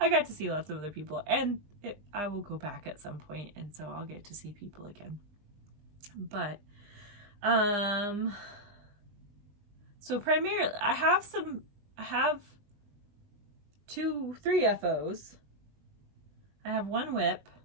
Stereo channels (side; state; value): left; late; 20 ms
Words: got to see lots of other people, and I will go back at some point, and so I'll get to see people again. But so primarily I have 3 FOs. I have 1 whip.